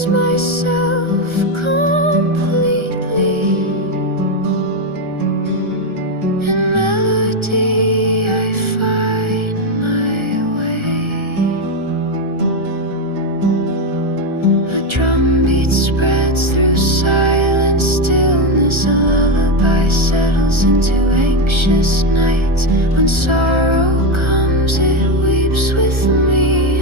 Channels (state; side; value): late; left; 1.3 ms